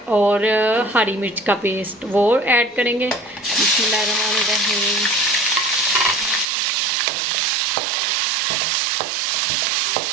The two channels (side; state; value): left; drops out; at 6.5 s